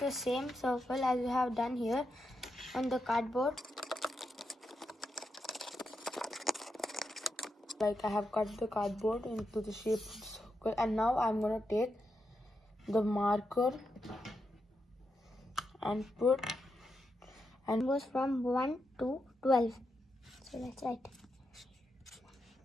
the same circle as you have done here on the cardboard. Like I have cut the cardboard into the shape of the circle, and now I'm going to take the marker and put and goes from 1 to 12. So let's write.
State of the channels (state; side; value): normal; both; correlation 0.85